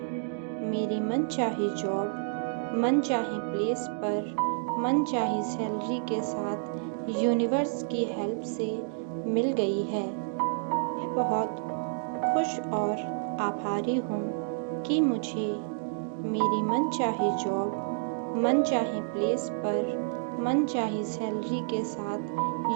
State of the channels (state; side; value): silent; left; digital silence